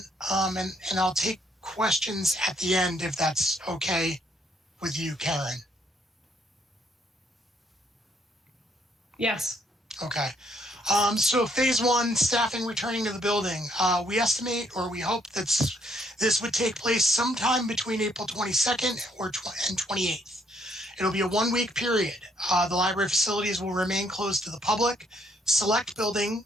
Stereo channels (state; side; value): normal; both; correlation 0.69